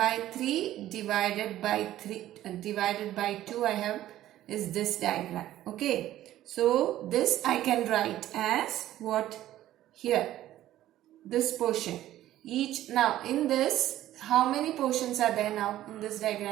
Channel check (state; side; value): quieter; left; 13.6 dB